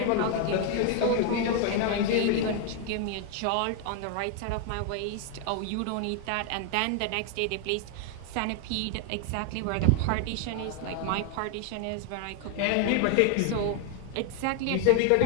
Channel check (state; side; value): different; both; correlation 0.01